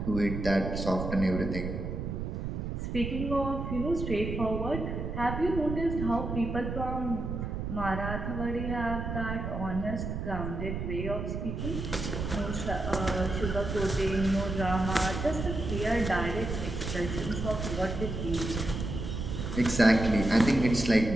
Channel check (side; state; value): right; noise; rumble, 4 dB below the sound